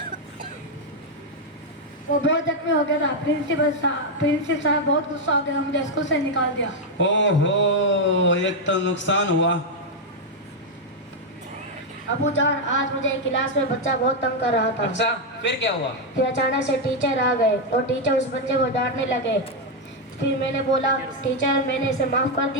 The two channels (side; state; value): both; normal; correlation 0.02